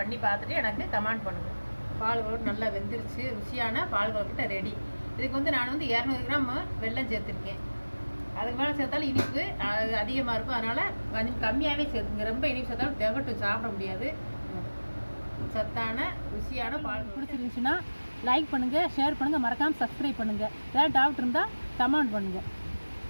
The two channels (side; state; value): both; inverted; correlation -1.00